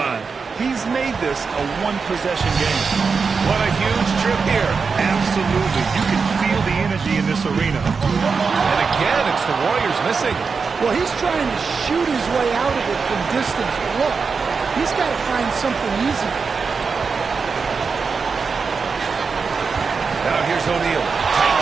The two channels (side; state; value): left; quieter; 5.1 dB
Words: He's made this a one-possession game. What a huge trip here. Absolutely. You can feel the energy in this arena. And again, it's the Warriors missing. Well, he's trying to shoot his way out of it from distance. But look, he's got to find something easy. Now here's O'Neal. Tight